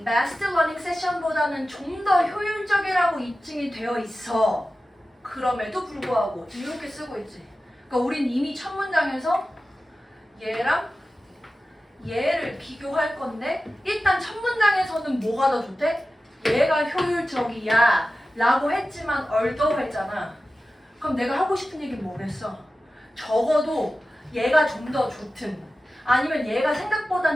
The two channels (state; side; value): normal; both; correlation 0.94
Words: massed learning session보다는 좀 더 효율적이라고 입증이 되어 있어. 그럼에도 불구하고 지금 이렇게 쓰고 있지. 그러니까 우린 이미 첫 문장에서 얘랑 얘를 비교할 건데 일단 첫 문장에서는 뭐가 더 좋대? 얘가 효율적이야 라고 했지만 although 했잖아. 그럼 내가 하고 싶은 얘기는 뭐겠어? 적어도 얘가 좀 더 좋든 아니면 얘가